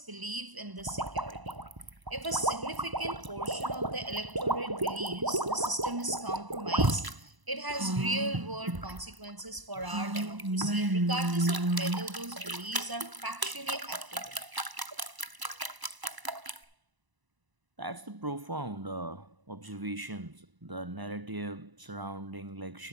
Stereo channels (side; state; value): left; late; 1.0 ms